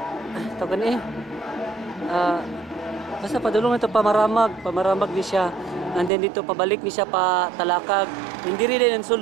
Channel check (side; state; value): left; drops out; at 6.1 s